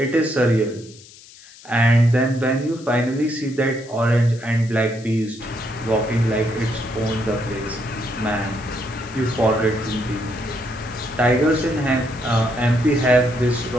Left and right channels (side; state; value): left; noise; hiss, 21 dB below the sound